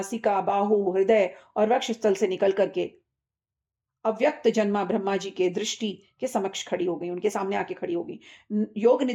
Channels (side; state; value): both; identical; correlation 1.00